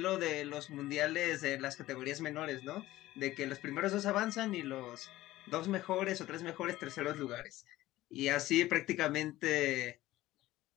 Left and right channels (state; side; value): quieter; right; 16.3 dB